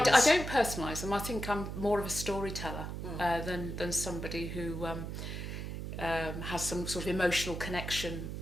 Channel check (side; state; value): right; noise; hum, 6 dB below the sound